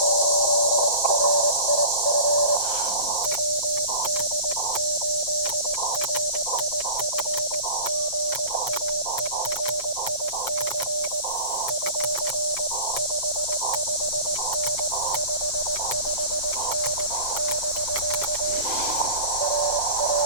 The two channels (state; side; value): late; right; 7.8 ms